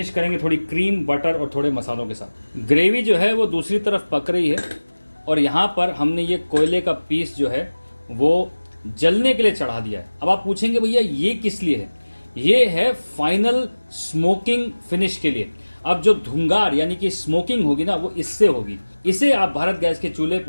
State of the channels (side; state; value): both; inverted; correlation -1.00